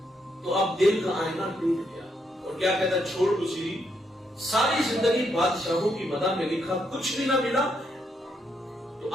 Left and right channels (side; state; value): both; normal; correlation 0.77